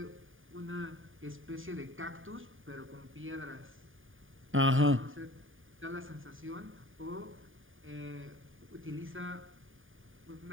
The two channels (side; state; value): left; late; 0.58 ms